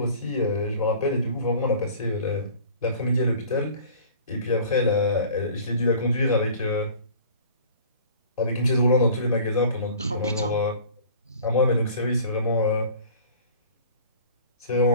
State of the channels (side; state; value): both; inverted; correlation -0.46